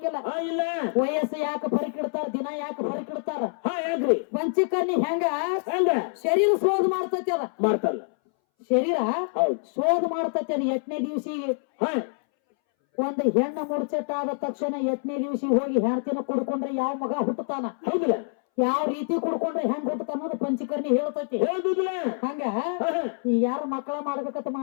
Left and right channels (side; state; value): right; silent; 61 dB below the other